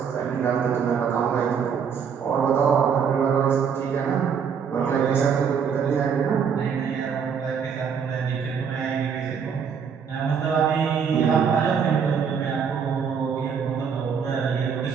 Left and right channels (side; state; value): left; quieter; 6.9 dB